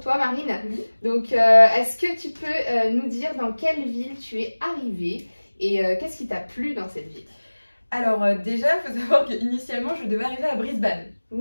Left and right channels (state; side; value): inverted; both; correlation -1.00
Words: Marine. Donc est-ce que tu peux nous dire dans quelle ville tu es arrivée et qu'est-ce qui t'a plu dans cette ville? Alors déjà il faut savoir qu'initialement je devais arriver à Brisbane.